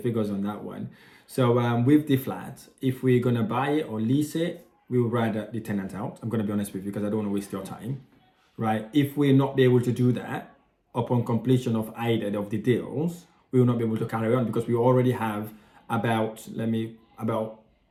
on that one. So with the flat, if we're gonna buy it or lease it, we would rather the tenant out. I'm gonna be honest with you because I don't want to waste your time, right? If we're not be able to do that upon completion of either of the deals, we will not be able to carry on because we already have about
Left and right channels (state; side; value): identical; both; correlation 1.00